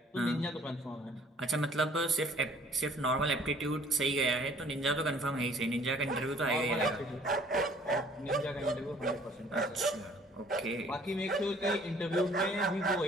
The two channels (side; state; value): both; normal; correlation 0.56